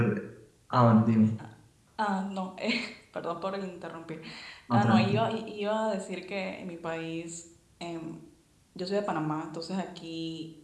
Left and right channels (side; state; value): both; identical; correlation 1.00